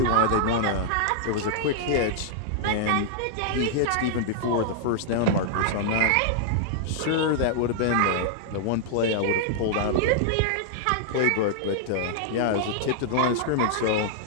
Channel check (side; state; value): both; different; correlation -0.01